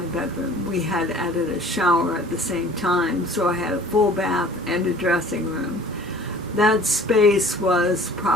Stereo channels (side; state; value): both; normal; correlation 0.48